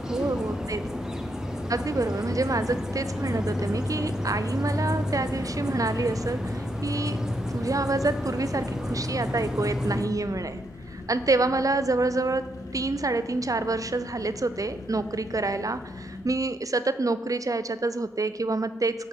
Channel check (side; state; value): both; normal; correlation 0.77